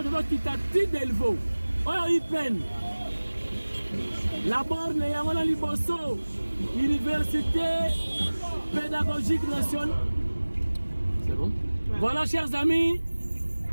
quitter Delvaux oyo ipen la borne ya ngona liboso université pédagogique nationale. C'est bon? Ouais. Voilà, chers amis.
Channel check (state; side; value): inverted; both; correlation -1.00